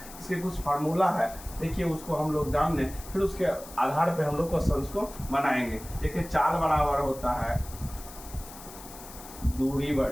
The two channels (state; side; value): noise; left; hiss, 16 dB below the sound